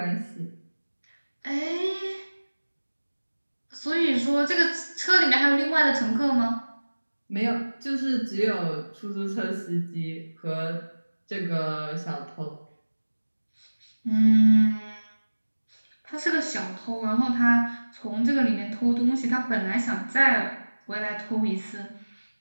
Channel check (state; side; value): inverted; both; correlation -1.00